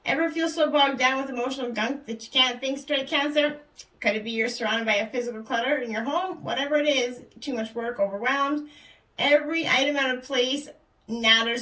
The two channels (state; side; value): identical; both; correlation 1.00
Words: Ever feel so bogged down with emotional gunk that you can't think straight, Cancer? Could it be you're surrounded by a physical clutter in your home? Whatever it is, too much work, overwhelmed. Every item out of place